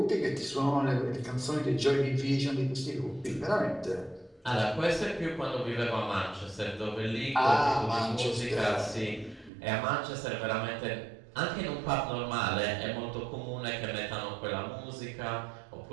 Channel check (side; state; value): left; drops out; at 9.5 s